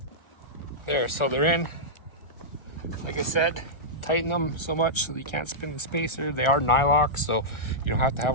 There, so they're in. Like I said, tighten them so much so that you can't spin the spacer. They are nylock, so you don't have to have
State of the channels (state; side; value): late; right; 1.3 ms